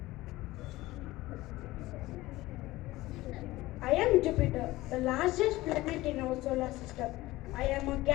I am Jupiter, the largest planet in our solar system. I am a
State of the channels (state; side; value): quieter; right; 18.3 dB